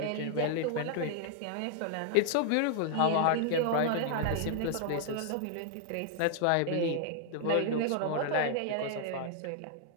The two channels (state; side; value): different; both; correlation 0.00